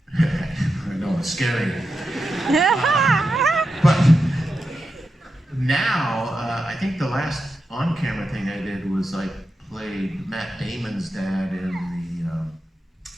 I know it's scary. But now, I think the last on camera thing I did was I played Matt Damon's dad in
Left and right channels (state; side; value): normal; both; correlation 0.89